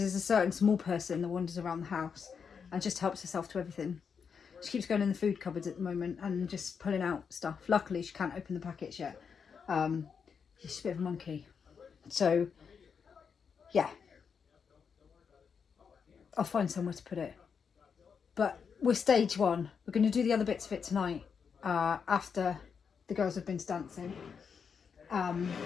there's a certain small person that wanders around the house and just helps herself to everything. She keeps going in the food cupboards at the moment and just pulling out stuff. Luckily, she can't open the packets yet. She's a bit of a monkey. So, yeah. I'll find somewhere to put it. But we're stage one. We're going to do the other bits of it tonight after the girls have been dancing.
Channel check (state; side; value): quieter; right; 6.4 dB